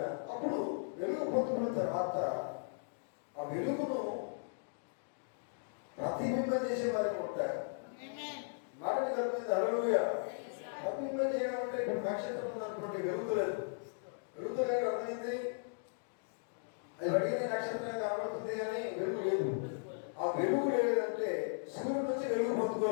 అప్పుడు వెలుగు పొందుకున్న తర్వాత ఆ వెలుగును ప్రతిబింబం చేసే వారికి ఉంటారు. మాటని కలిపింది. హల్లెలూయా. ప్రతిబింబం చేయడం అంటే ఇప్పుడు నక్షత్రం ఉందనుకోండి, వెలుగులేదు. వెలుగులేదు అర్థమైంది. అది అడిగిన నక్షత్రం కనబడుతుంది కానీ వెలుగు లేదు. ఆ వెలుగు లేదంటే సూర్యుడి నుంచి వెలుగు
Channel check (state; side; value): silent; right; digital silence